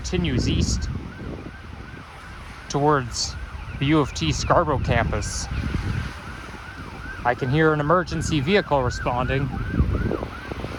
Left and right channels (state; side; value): identical; both; correlation 1.00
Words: east towards the U of T Scarborough campus. I can hear an emergency vehicle responding.